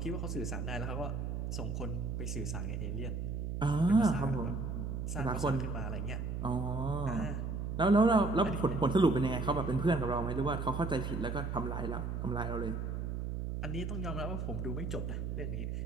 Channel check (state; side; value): noise; right; hum, 3 dB below the sound